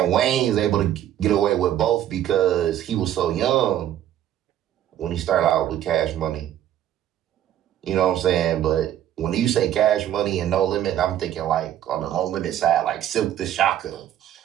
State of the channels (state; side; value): quieter; left; 11.5 dB